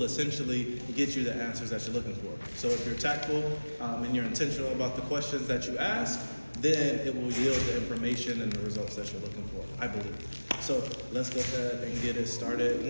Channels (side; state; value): both; inverted; correlation -1.00